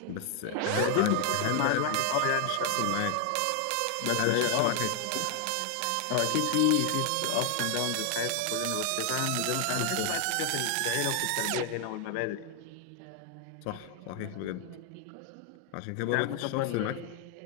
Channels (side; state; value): both; different; correlation 0.00